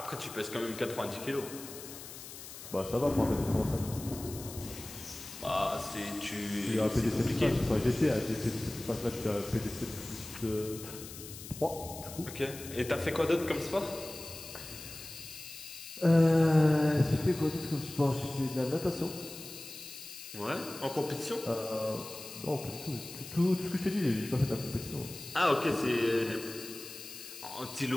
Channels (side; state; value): left; noise; hiss, 13 dB below the sound